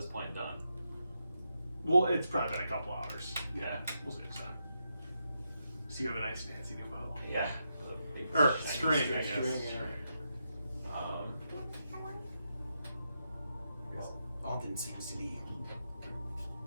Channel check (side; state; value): both; inverted; correlation -0.84